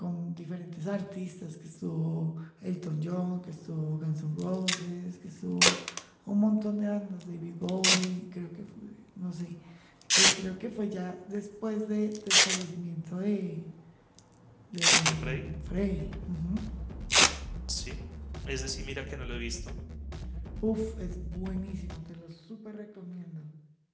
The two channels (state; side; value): identical; both; correlation 1.00